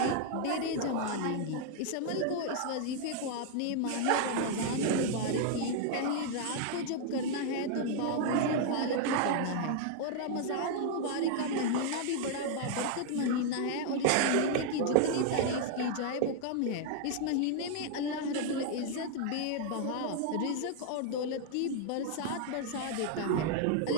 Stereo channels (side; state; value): both; different; correlation -0.01